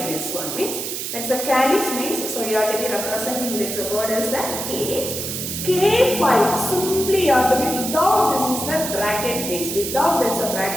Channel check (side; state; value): right; noise; hiss, 5 dB below the sound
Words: this one? Means that's a calyx means, so you have to be representing this word as the K. K5, simply you have to be without this is the bracket means, without that's a